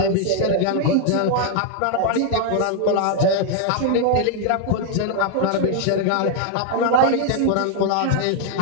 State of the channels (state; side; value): different; both; correlation 0.00